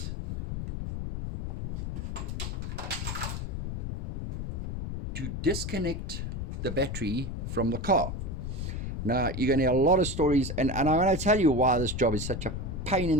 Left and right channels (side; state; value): left; noise; rumble, 4 dB below the sound